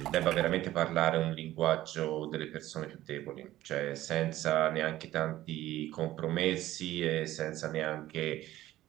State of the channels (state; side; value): quieter; left; 14.9 dB